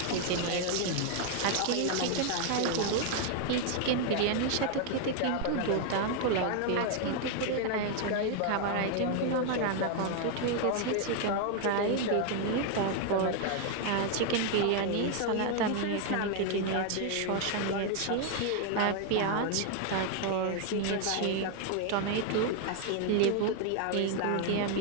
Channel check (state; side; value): different; both; correlation 0.00